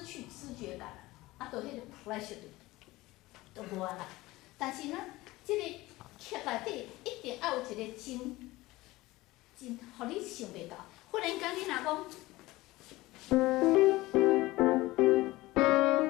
去知觉感啦，就迄个 pleasure 就无啊啦。但是呢，即个剧内底一定要有一个真，互你想袂到。忽然间你若讲，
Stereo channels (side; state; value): right; quieter; 19.2 dB